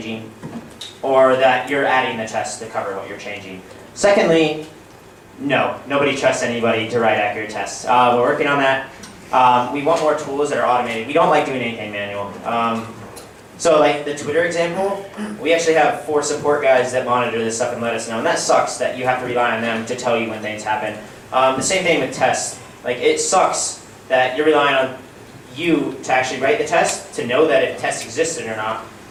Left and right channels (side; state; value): both; identical; correlation 1.00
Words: or that you're adding the tests to cover what you're changing. Secondly, no, nobody trusts anybody to write accurate tests. We're working on that. We want more tools that are automated. We don't like doing anything manual. So like the Twitter example, we actually have 4 support guys that monitor this stuff and let us know, and that sucks that you have to rely on them to tell you when things happen. The same thing with tests. Like it sucks that you're relying on you to actually write the test, to know that if tests existed or not,